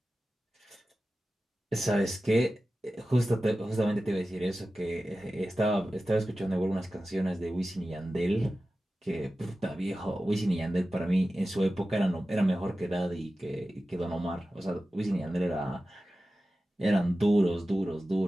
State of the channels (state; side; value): normal; both; correlation 0.94